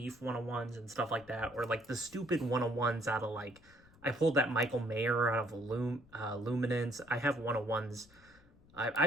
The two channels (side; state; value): left; noise; rumble, 26 dB below the sound